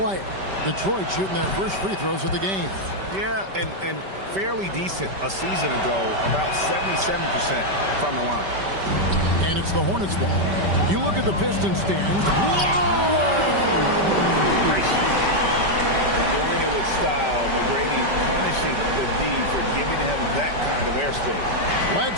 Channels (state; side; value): late; left; 5.2 ms